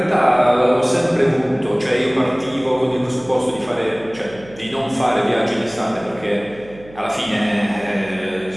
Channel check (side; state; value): right; noise; hum, 21 dB below the sound